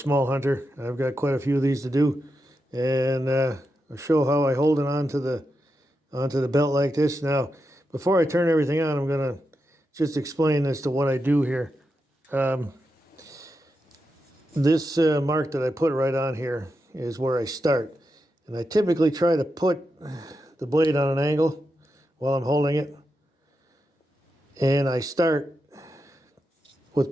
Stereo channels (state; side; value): normal; both; correlation 0.87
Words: hunter. I've got quite a few of these to do, and I'll show how I hold it onto the belt like this. Now, before I turn everything on, I'm going to just explain as to what I do here. This mark that I put right on here is where I start, and I typically try to put the blade on an angle while I'm holding it. And I start